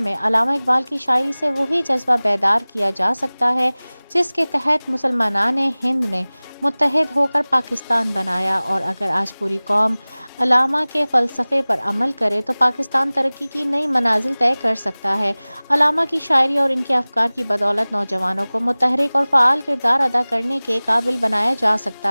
علامہ اقبال کی شاعری سے وہی جذبہ بیدار کیا جا سکتا ہے جس کے تحت مسلمانان ہند نے متحد ہو کر پاکستان بنایا، اور اگر آج پوری قوم علامہ کے فلسفے پر عمل کرے تو پاکستان ترقی کی نئی منازل طے کر سکتا ہے۔ علامہ کی شاعری اور ان کے افکار کی بدولت نوجوانوں کو متحرک اور فعال کردار ادا کرنے کے قابل بنایا جا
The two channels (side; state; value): both; inverted; correlation -1.00